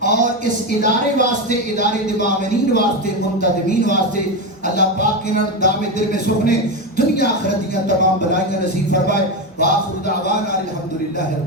اور اس ادارے واسطے، ادارے دے معاونین واسطے، منتظمین واسطے اللہ پاک انہاں دام دل میں سکھنے دنیا آخرت دیاں تمام بلائیاں نصیب فرمائے۔ وآخر دعوانا الحمدللہ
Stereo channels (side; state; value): both; normal; correlation 0.14